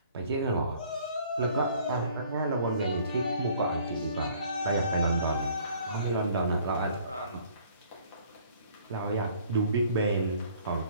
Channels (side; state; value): both; inverted; correlation -0.57